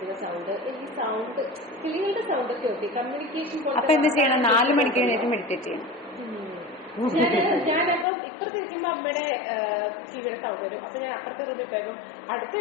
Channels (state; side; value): drops out; right; at 8.1 s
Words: സൗണ്ട്, ഈ സൗണ്ട് കിളികളുടെ സൗണ്ട് ഒക്കെ ഓക്കെ, കമ്മ്യൂണിക്കേഷൻ. അപ്പൊ എന്ത് ചെയ്യണം? 4 മണിക്ക് എഴുന്നേറ്റ് മെഡിറ്റേറ്റ് ചെയ്യണം. ഞാനപ്പം ഇപ്പുറത്ത് ഇരിക്കുമ്പോ അമ്മയുടെ ടിവിയുടെ സൗണ്ട് വരും. അപ്പൊ ഞാൻ അപ്പുറത്തെ റൂമിൽ പോകും. അടുത്ത